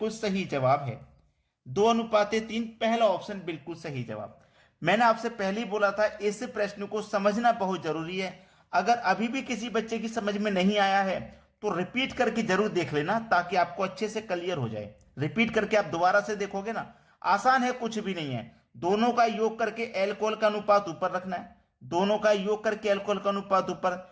सही जवाब है। 2:3 पहला ऑप्शन बिल्कुल सही जवाब। मैंने आपसे पहले ही बोला था, इस प्रश्न को समझना बहुत जरूरी है। अगर अभी भी किसी बच्चे की समझ में नहीं आया है तो रिपीट करके जरूर देख लेना, ताकि आपको अच्छे से क्लियर हो जाए। रिपीट करके आप दोबारा से देखोगे ना, आसान है, कुछ भी नहीं है। दोनों का योग करके एल्कोहल का अनुपात ऊपर रखना है, दोनों का योग करके एल्कोहल का अनुपात ऊपर,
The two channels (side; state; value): both; identical; correlation 1.00